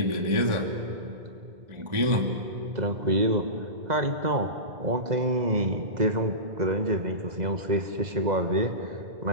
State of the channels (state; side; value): late; left; 2.0 ms